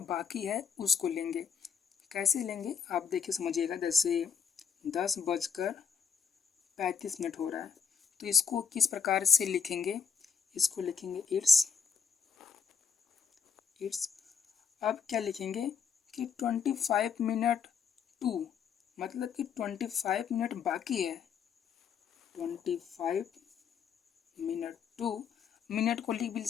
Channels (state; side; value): quieter; right; 6.7 dB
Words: बाकी है उसको लेंगे। कैसे लेंगे आप देखिए समझिएगा। जैसे 10:35 हो रहा है, तो इसको किस प्रकार से लिखेंगे, इसको लिखेंगे इट्स। अब क्या लिखेंगे कि 25 मिनट टू, मतलब कि 25 मिनट बाकी है। 25 मिनट टू, मिनट को लिख भी